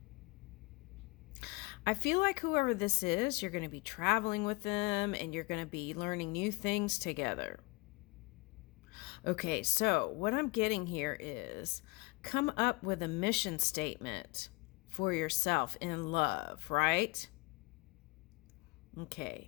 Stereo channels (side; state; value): right; quieter; 25.0 dB